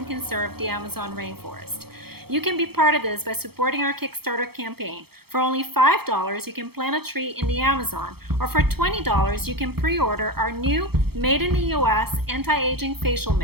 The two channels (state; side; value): late; left; 0.96 ms